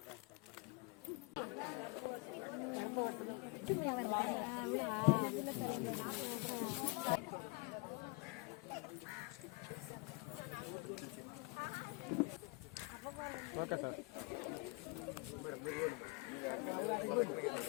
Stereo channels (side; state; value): right; quieter; 27.6 dB